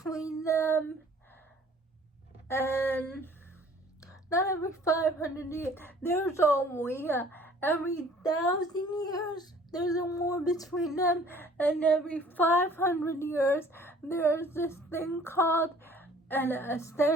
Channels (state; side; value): normal; both; correlation 0.53